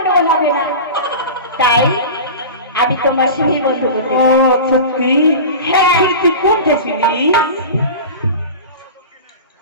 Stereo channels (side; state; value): both; inverted; correlation -0.32